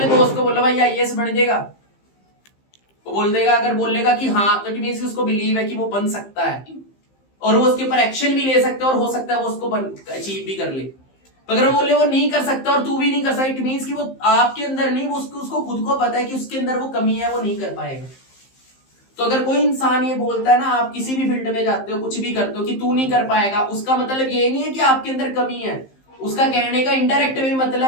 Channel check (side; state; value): right; late; 15 ms